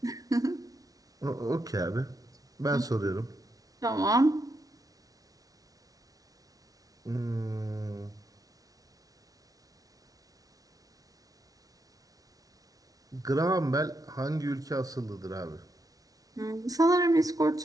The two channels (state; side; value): late; left; 0.18 ms